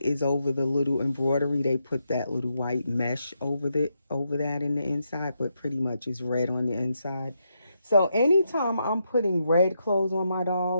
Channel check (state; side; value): inverted; both; correlation -0.82